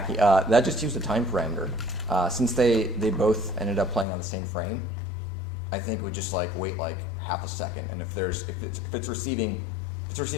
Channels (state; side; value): drops out; right; at 4.0 s